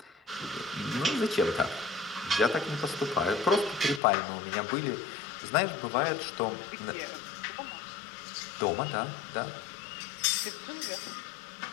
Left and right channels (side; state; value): right; drops out; at 4.0 s